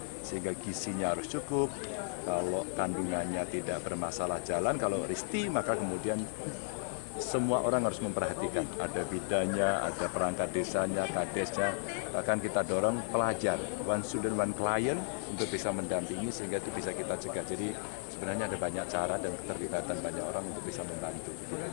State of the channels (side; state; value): right; silent; 55 dB below the other